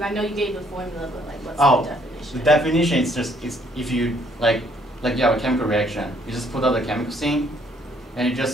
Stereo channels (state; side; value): normal; both; correlation 0.66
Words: I know you gave the formula, but like, what's the definition? The definition is just if you like you have a chemical reaction, you just put out the chemicals in, and it